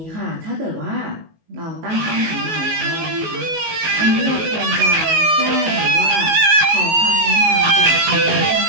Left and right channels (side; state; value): left; late; 19 ms